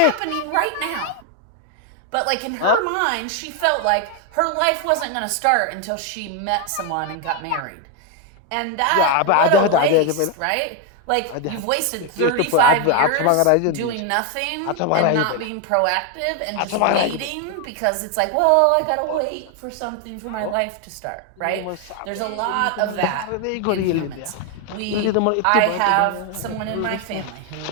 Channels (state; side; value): different; both; correlation 0.01